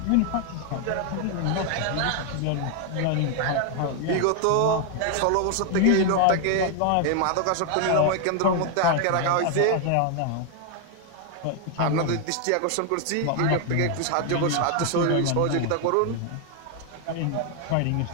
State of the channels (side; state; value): both; different; correlation 0.00